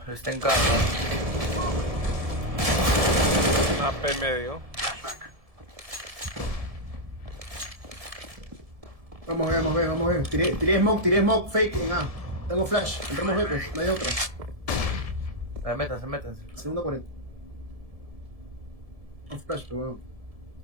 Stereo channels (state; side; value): late; left; 1.7 ms